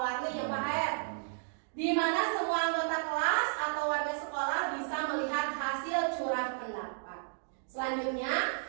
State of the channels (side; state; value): left; silent; digital silence